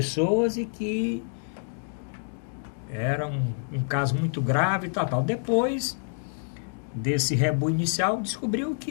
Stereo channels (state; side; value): silent; right; digital silence